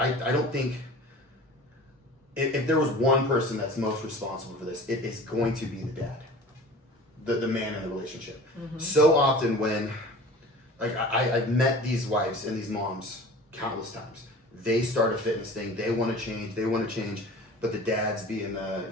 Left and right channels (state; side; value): normal; both; correlation 0.40